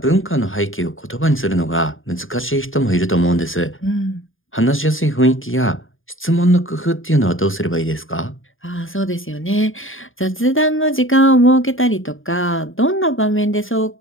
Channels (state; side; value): late; right; 0.59 ms